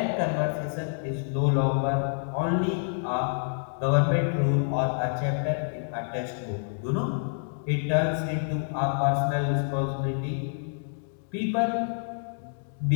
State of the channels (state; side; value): silent; right; digital silence